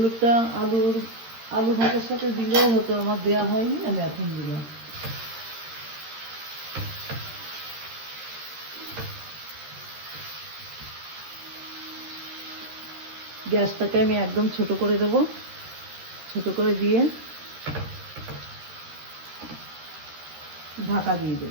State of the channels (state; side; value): late; left; 13 ms